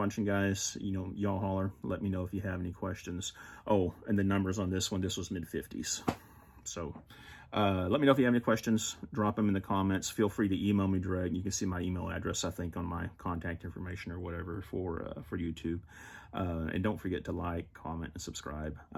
guys. You know, y'all holler. Let me know if you have any questions. Oh, and the numbers on this one, this was mid-50s. So let me know if you have any questions. Drop them in the comments. Feel free to email me direct. You can see my email address, I think, on my contact information or whatever for YouTube. And don't forget to like, comment, and subscribe. I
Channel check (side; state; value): both; identical; correlation 1.00